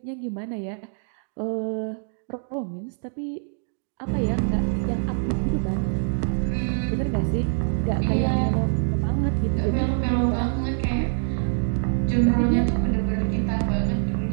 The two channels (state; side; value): silent; left; digital silence